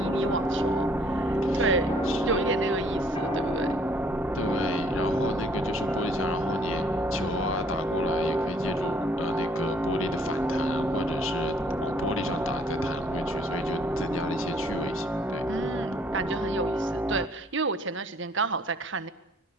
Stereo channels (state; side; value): normal; both; correlation 0.61